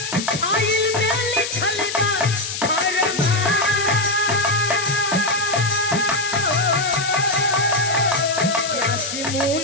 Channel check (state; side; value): noise; left; hiss, 6 dB below the sound